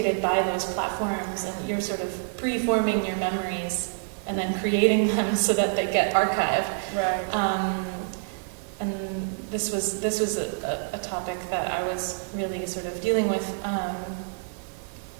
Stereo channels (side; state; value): left; silent; digital silence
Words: by those platforms, and you're sort of preforming your memories and then creating them so that they get archived. And this was a topic that I was really sort of dealing with.